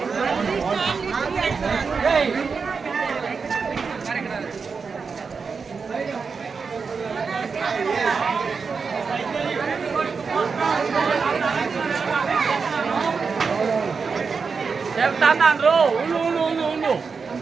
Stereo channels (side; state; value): left; quieter; 5.2 dB